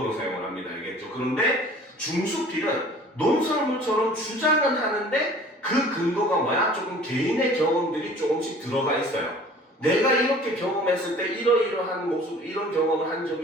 사용을 합니다. 알겠죠? 그런데 중수필은 논설문처럼 주장은 하는데 그 근거가 뭐야? 조금 개인의 경험들이 조금씩 들어가 있어요. 내가 이렇게 경험했을 때 이러이러한 모습, 이런 경험을 한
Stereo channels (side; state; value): both; normal; correlation 0.48